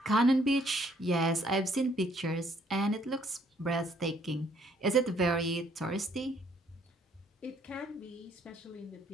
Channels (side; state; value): both; normal; correlation 0.65